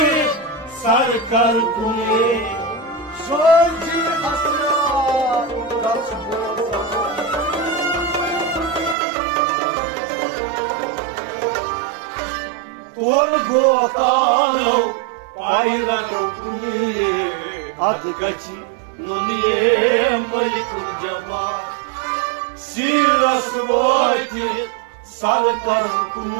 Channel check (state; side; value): drops out; left; at 9.0 s